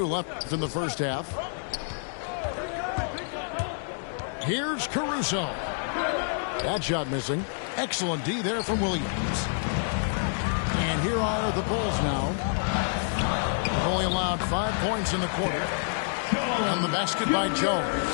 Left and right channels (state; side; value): silent; right; digital silence